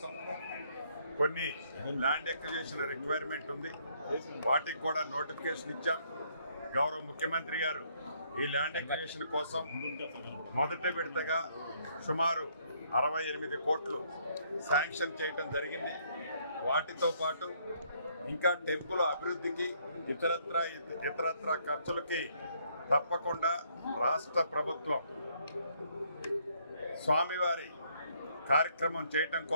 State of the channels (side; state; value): both; inverted; correlation -0.68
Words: కొన్ని ల్యాండ్ ఎక్విజిషన్ రిక్వైర్మెంట్ ఉంది, వాటికి కూడా నోటిఫికేషన్ ఇచ్చాం. గౌరవ ముఖ్యమంత్రి గారు ఈ ల్యాండ్ ఎక్విజిషన్ కోసం మొదటి విడతగా సుమారు 68 కోట్లు శాంక్షన్ చేయడం జరిగింది. వాటితో పాటు ఇంకా టెంపుల్ అభివృద్ధికి ఇతరత్ర ఖర్చులకి తప్పకుండా రాష్ట్ర ప్రభుత్వం స్వామివారి కార్యక్రమం చేయటం